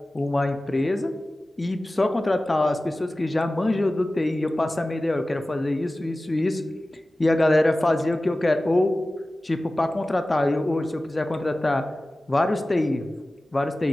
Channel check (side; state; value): both; normal; correlation 0.96